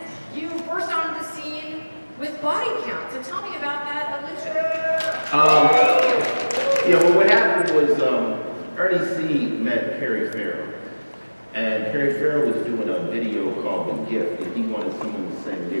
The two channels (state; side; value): inverted; both; correlation -1.00